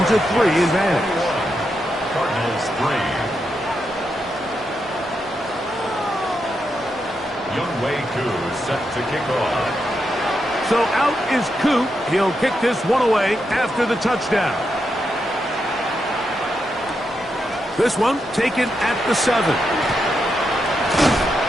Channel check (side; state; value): both; normal; correlation 0.84